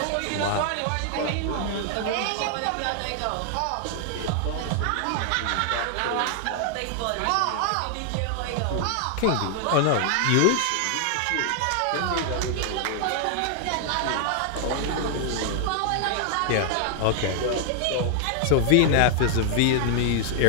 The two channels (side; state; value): both; different; correlation 0.00